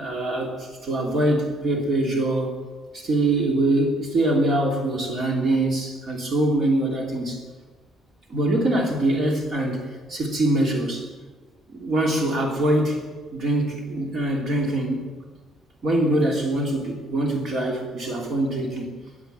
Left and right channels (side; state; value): both; normal; correlation 0.65